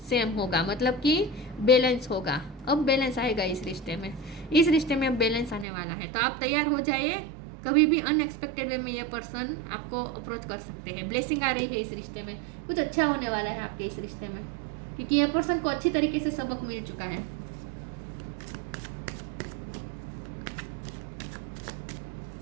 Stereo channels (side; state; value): left; drops out; at 5.7 s